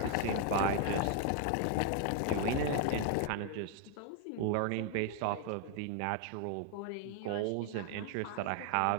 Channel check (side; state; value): both; different; correlation 0.00